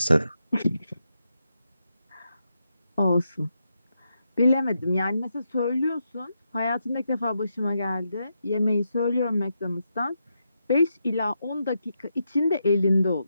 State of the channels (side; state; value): both; inverted; correlation -0.84